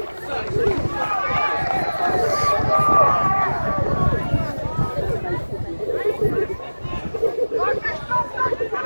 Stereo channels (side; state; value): both; inverted; correlation -1.00